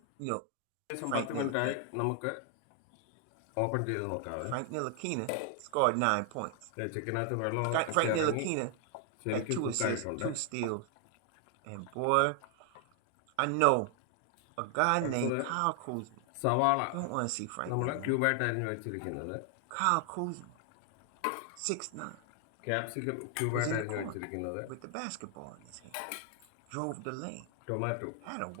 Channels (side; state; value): both; different; correlation 0.00